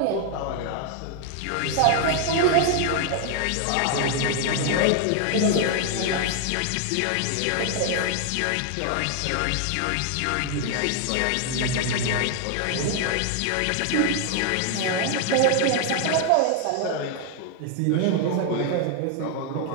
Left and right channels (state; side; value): different; both; correlation 0.00